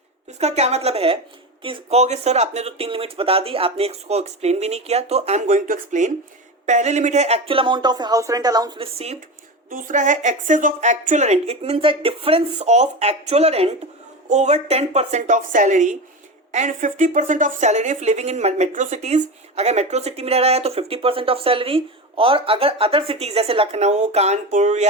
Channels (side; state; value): both; normal; correlation 0.23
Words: तो इसका क्या मतलब है कि कहोगे सर आपने तो 3 लिमिट्स बता दी, आपने इसको एक्सप्लेन भी नहीं किया, तो I am going to explain. पहले लिमिट है actual amount of house rent allowance received. दूसरा है excess of actual rent, it means the difference of actual rent over 10% of salary and 50% of salary if living in metro cities. अगर metro city में रह रहा है तो 50% of salary, और अगर अदर सिटीज जैसे लखनऊ, कानपुर